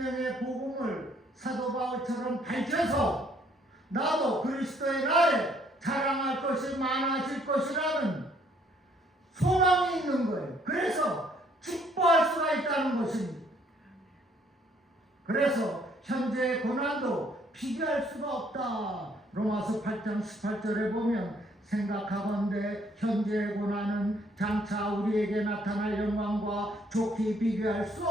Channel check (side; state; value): both; normal; correlation 0.65